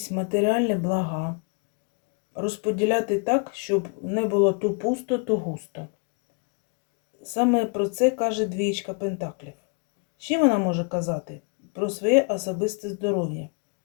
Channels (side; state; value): right; quieter; 34.7 dB